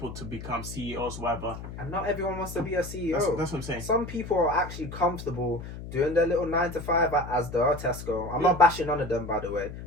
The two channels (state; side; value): noise; left; hum, 10 dB below the sound